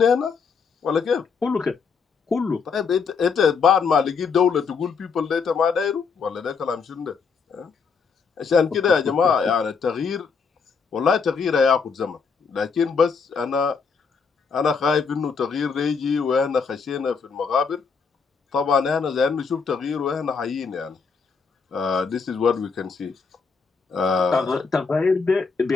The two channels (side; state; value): right; quieter; 5.4 dB